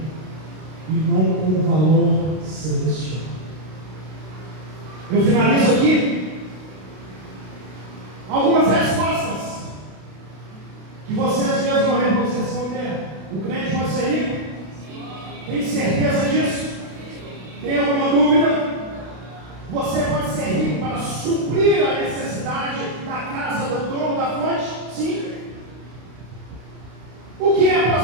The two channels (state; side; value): late; left; 32 ms